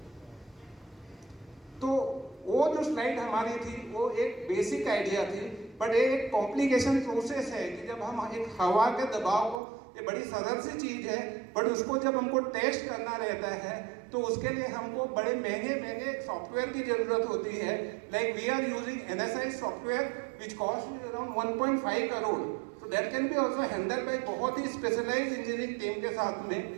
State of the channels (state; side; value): drops out; left; at 9.6 s